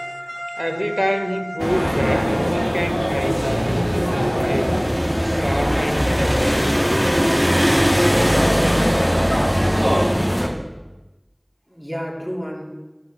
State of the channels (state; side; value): identical; both; correlation 1.00